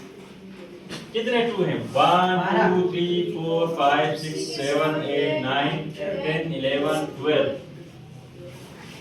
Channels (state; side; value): identical; both; correlation 1.00